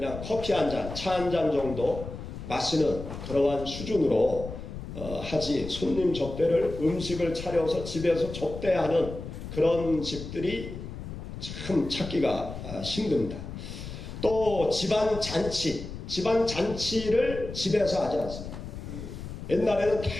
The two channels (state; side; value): noise; left; rumble, 9 dB below the sound